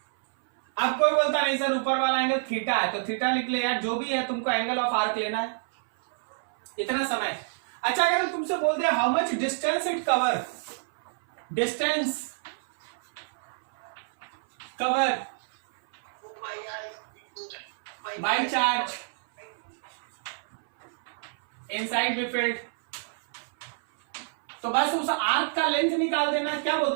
अब कोई बोलता नहीं सर ऊपर वाला एंगल थीटा है, तो थीटा लिख ले यार, जो भी है तुमको एंगल ऑफ आर्क लेना है, इतना समय। अच्छा अगर हम तुमसे बोलते हैं how much distance it cover, distance cover by charge inside B field. तो बस उस आर्क का लेंथ निकाल देना। क्या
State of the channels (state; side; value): silent; left; 59 dB below the other